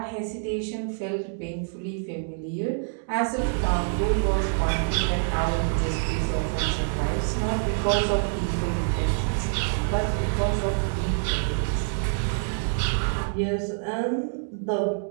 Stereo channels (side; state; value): left; silent; digital silence